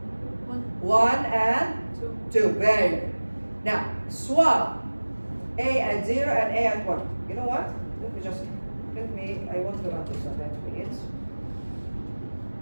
1 and 2. Very good. Now, swap A at 0 and A at 1. You know what? I want to run this on that minutes.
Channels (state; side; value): inverted; both; correlation -1.00